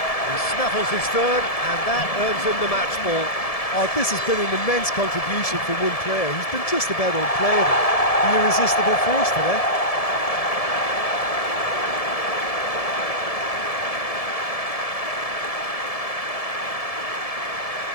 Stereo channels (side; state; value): right; late; 1.7 ms